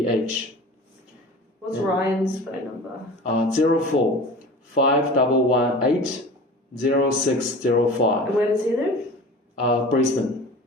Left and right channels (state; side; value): normal; both; correlation 0.37